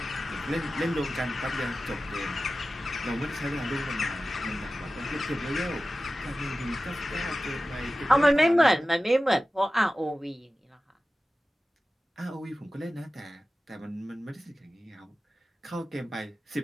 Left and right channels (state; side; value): normal; both; correlation 0.95